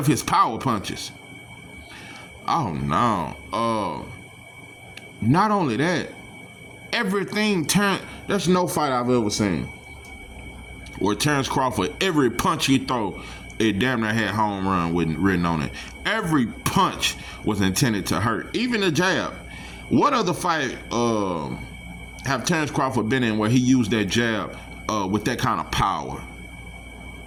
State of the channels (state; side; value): identical; both; correlation 1.00